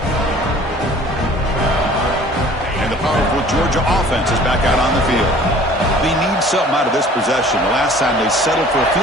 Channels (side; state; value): both; normal; correlation 0.49